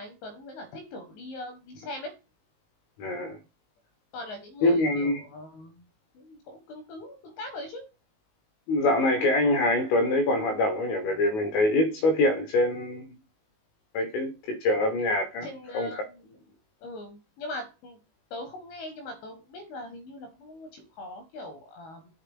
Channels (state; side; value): late; right; 19 ms